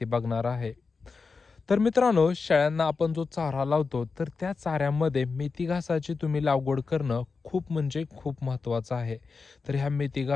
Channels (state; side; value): quieter; right; 4.6 dB